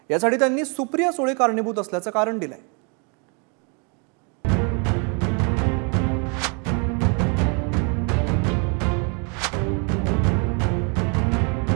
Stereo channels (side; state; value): left; quieter; 35.6 dB